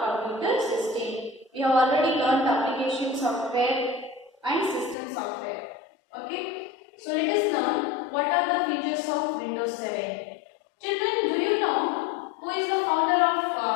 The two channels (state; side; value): drops out; right; at 5.0 s